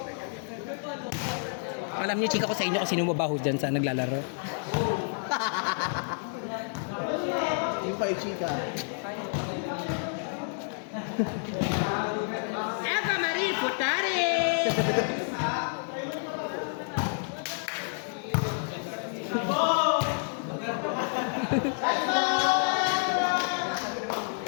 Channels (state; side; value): silent; right; 57 dB below the other